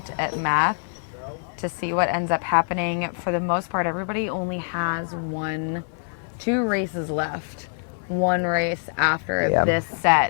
at math to see what ends up happening. For the most part, everybody only has 2 races left. 1 race after this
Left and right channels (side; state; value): right; silent; 62 dB below the other